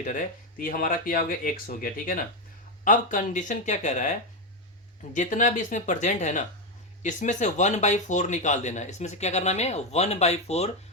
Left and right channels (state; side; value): normal; both; correlation 0.08